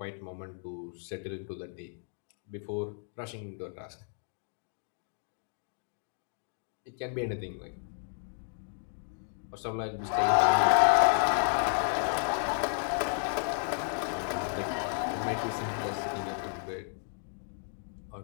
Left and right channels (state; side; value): silent; right; 56 dB below the other